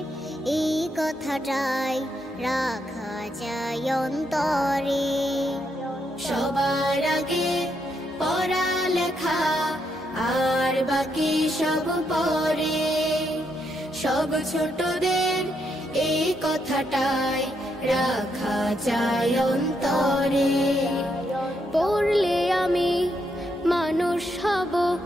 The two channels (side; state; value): both; normal; correlation 0.78